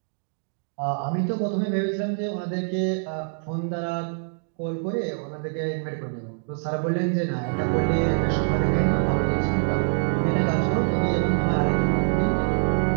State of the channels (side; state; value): left; silent; digital silence